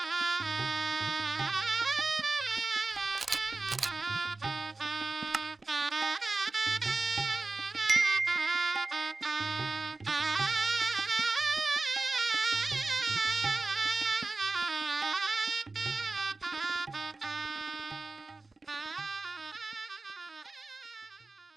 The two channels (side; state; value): left; quieter; 3.5 dB